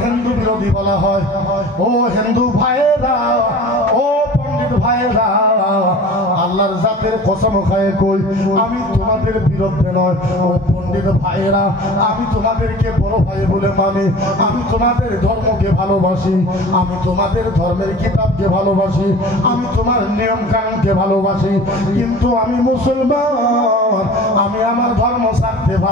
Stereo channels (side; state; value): both; normal; correlation 0.41